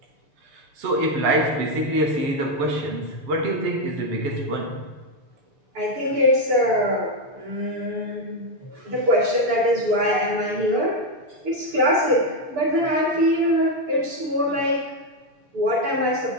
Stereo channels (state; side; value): late; left; 6.8 ms